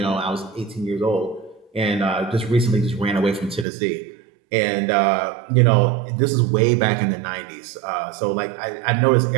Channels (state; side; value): drops out; left; at 3.7 s